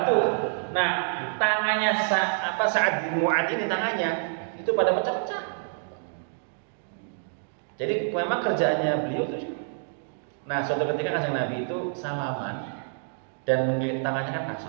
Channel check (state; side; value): silent; left; digital silence